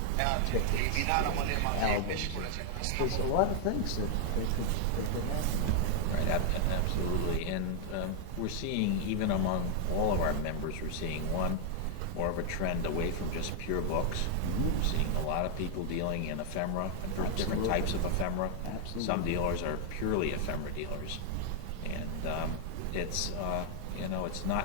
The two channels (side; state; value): both; different; correlation 0.00